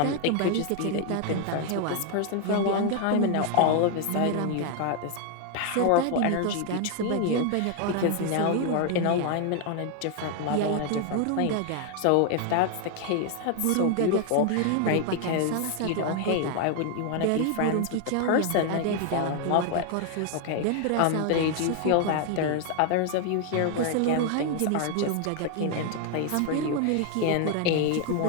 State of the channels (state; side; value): different; both; correlation 0.00